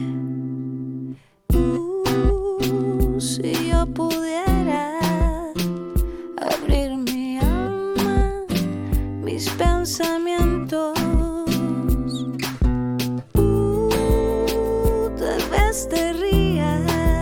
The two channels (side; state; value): both; identical; correlation 1.00